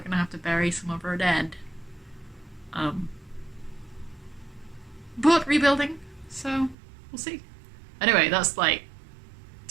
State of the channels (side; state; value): left; drops out; at 6.8 s